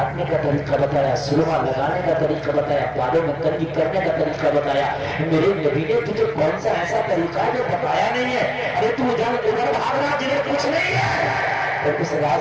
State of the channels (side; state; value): both; identical; correlation 1.00